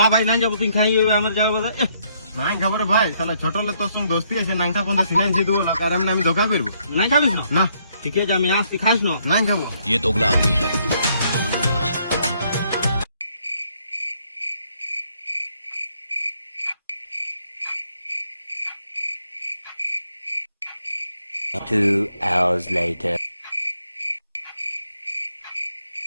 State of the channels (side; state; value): both; inverted; correlation -0.70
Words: ভাই নাই যাবো, তুই খাই আমার যাবো। নাই খাবার ভাই, শালা ছোট হলে তোর সঙ্গে দোস্তি আছে, নাংটা পর্যন্ত সিনাই দিয়ে দেবো, আর আমি ধোকা করবো। নাই খাবিস না? না ঠিক আছে আমি আসছি, খাস না? নাই খাবো। ये दोगला आदमी है। Two hours later.